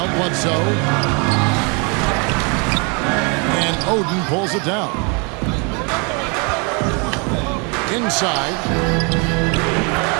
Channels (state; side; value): quieter; left; 33.0 dB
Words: Bledsoe. And Oden pulls it down. Inside.